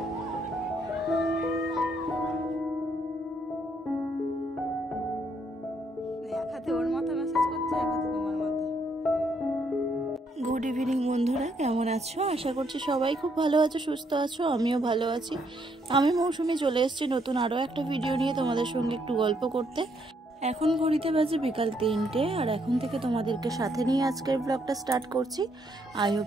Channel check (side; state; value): both; normal; correlation 0.72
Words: evening বন্ধুরা, কেমন আছো? আশা করছি সবাই খুব ভালো আছো, সুস্থ আছো। আমিও ভালো আছি। আমি মৌসুমি চলে এসেছি নতুন আরও একটা ভিডিও নিয়ে তোমাদের সঙ্গে একটু গল্প করতে। এখন ঘড়িতে বাজে বিকাল 3টে, আর এখন থেকে তোমাদেরকে সাথে নিয়ে আজকের ব্লগটা স্টার্ট করছি। আই